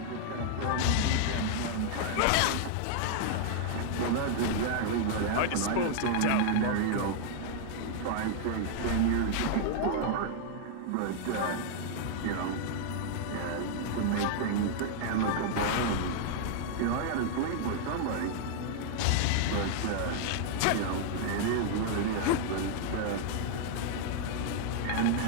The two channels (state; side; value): different; both; correlation 0.00